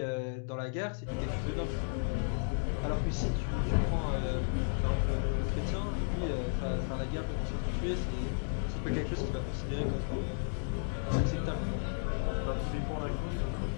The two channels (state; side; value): silent; right; digital silence